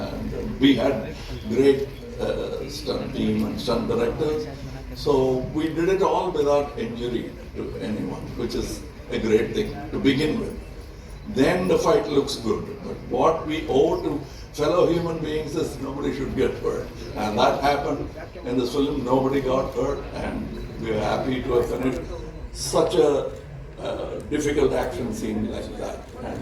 we had great stunt team and stunt directors. So we did it all without injury to anyone, which is a great thing to begin with. Then the fight looks good. But what we owe to fellow human beings is nobody should get hurt. And that happened in this film. Nobody got hurt, and we are happy to have finished such a difficult action scene like that.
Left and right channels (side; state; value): both; identical; correlation 1.00